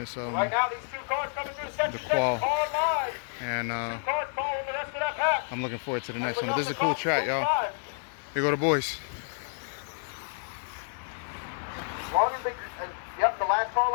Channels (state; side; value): silent; right; 58 dB below the other